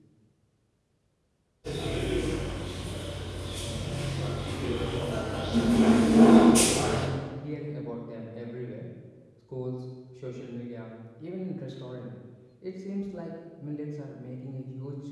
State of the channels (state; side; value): identical; both; correlation 1.00